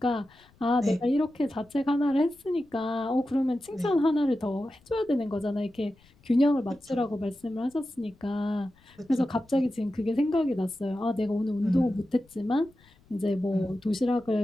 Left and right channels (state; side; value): noise; left; rumble, 30 dB below the sound